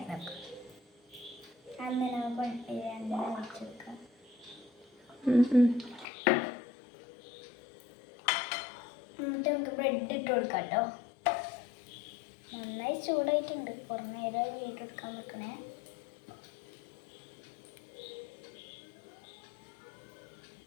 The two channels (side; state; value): right; drops out; at 6.1 s